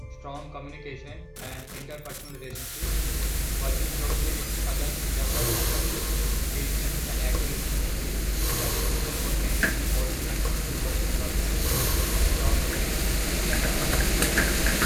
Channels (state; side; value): identical; both; correlation 1.00